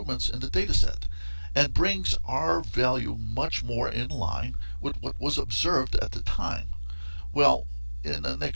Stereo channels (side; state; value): both; inverted; correlation -1.00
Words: in the dataset and brings our value much more in line with what was observed at the time." Well, in the